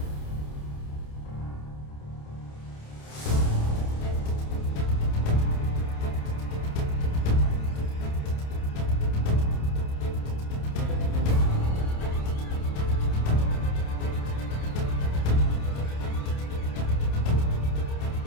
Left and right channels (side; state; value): right; late; 28 ms